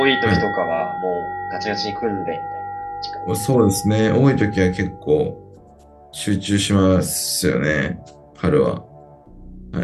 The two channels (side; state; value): both; identical; correlation 1.00